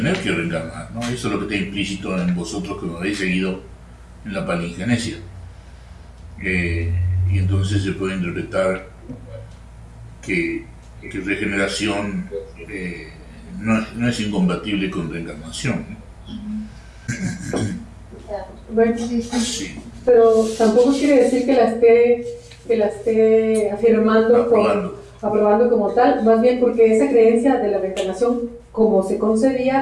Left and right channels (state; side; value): identical; both; correlation 1.00